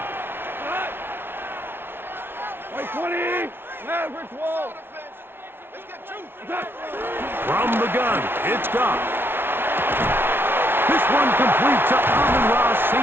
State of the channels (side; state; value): left; late; 0.11 ms